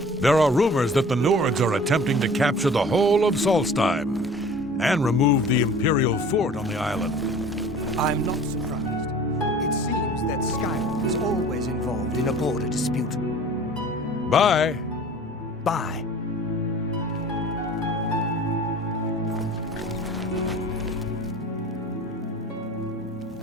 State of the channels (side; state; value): both; normal; correlation 0.45